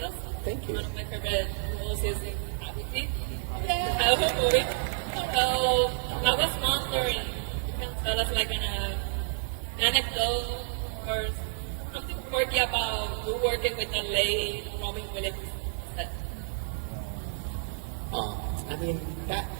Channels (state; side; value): silent; left; digital silence